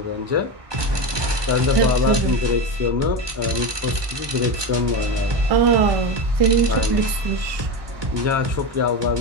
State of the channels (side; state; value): left; late; 1.2 ms